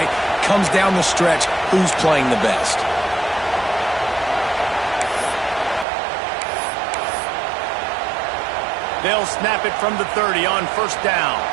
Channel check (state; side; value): drops out; left; at 5.9 s